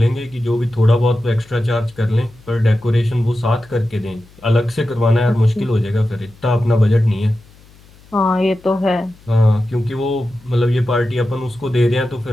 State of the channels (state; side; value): noise; left; hum, 26 dB below the sound